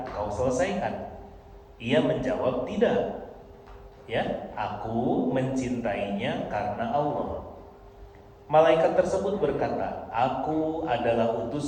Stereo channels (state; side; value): identical; both; correlation 1.00